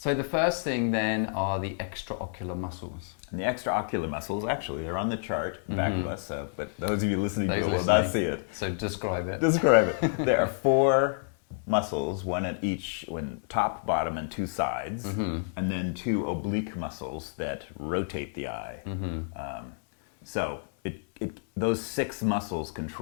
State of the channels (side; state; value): right; silent; 58 dB below the other